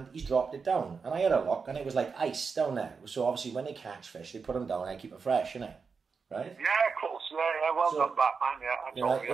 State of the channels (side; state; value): left; quieter; 5.3 dB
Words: he's dropped it down. And I had a look, and it was like ice down there. So obviously, when they catch fish, they put them down and keep it fresh, innit? Right? Yeah, of course. Yeah, well done,